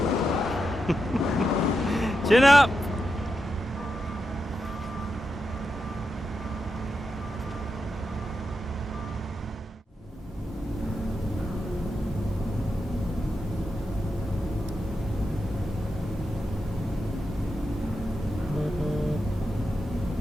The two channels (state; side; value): normal; both; correlation 0.87